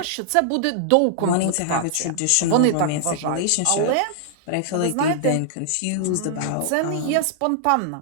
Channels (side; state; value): both; different; correlation -0.01